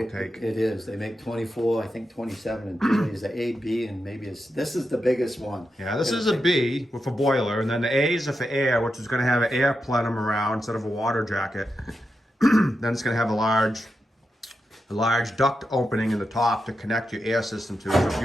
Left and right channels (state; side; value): normal; both; correlation 0.88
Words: take. It is. They make 24, I think 27 and 30 is the A, B, and maybe this is the biggest one. Yeah, this is a B with a boiler, and then the A's are for air, which is going to have an air plenum around instead of a water jacket. Then it's going to have a large duct opening in the top to connect your air system to. So if